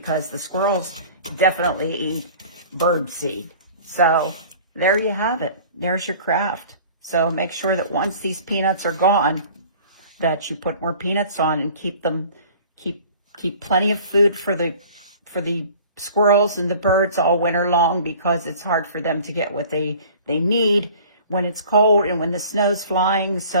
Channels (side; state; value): both; inverted; correlation -0.47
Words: the squirrels definitely eat bird seed. So there you have it. There's your craft. So make sure that once these peanuts are gone, that you put more peanuts on and keep plenty of food for the squirrels and the birds all winter long, because it's hard for them to get what they need when it's cold and when the snow's flying.